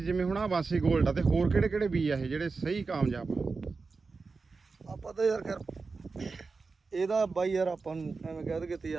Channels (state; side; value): quieter; left; 4.3 dB